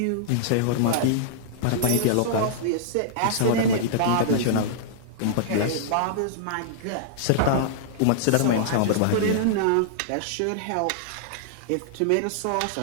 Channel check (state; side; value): different; both; correlation -0.02